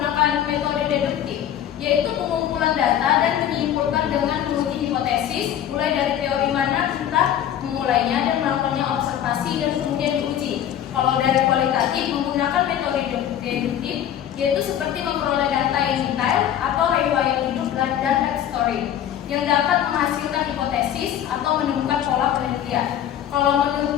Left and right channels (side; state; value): right; quieter; 10.5 dB